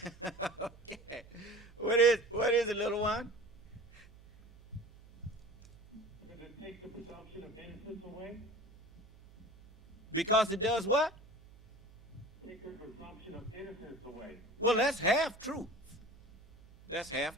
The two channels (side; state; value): right; noise; hum, 23 dB below the sound